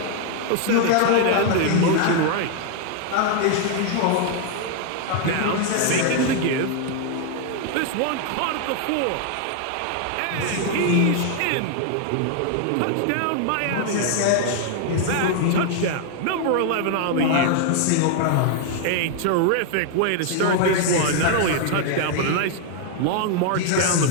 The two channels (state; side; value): different; both; correlation 0.00